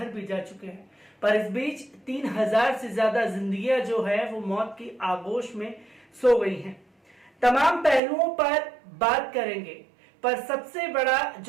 भी जा चुके हैं। पर इस बीच 3,000 से ज्यादा जिंदगियां जो है वो मौत की आगोश में सो गई हैं। तमाम पहलुओं पर बात करेंगे, पर सबसे बड़ा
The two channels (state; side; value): drops out; left; at 8.0 s